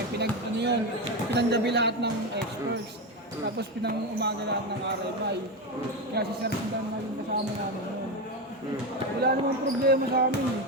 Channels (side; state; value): both; normal; correlation 0.14